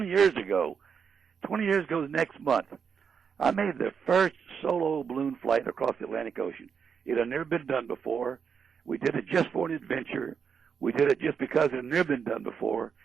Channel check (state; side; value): quieter; left; 6.7 dB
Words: years ago. 20 years ago next month. I made the first solo balloon flight across the Atlantic Ocean. It had never been done before. We did it just for an adventure. We did it just because it had never been done before.